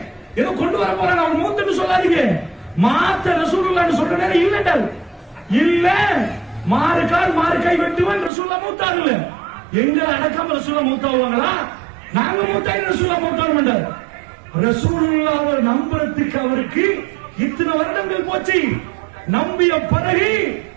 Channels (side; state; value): left; drops out; at 8.3 s